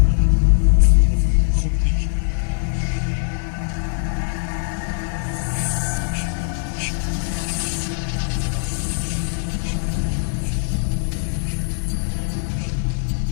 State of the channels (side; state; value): right; silent; digital silence